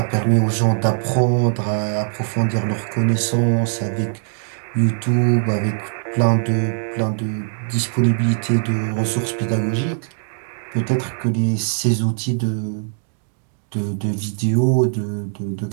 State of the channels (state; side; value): silent; left; digital silence